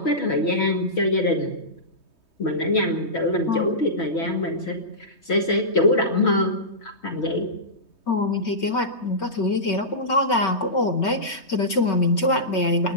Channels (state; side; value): late; right; 3.2 ms